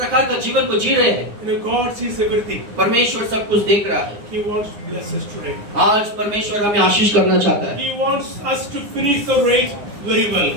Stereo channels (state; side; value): late; left; 9.8 ms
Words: का जीवन को जी रहे हैं? You know, God sees everything. परमेश्वर सब कुछ देख रहा है। He wants to bless us today. आज परमेश्वर हमें आशीष करना चाहता है। He wants us to finish the race very well.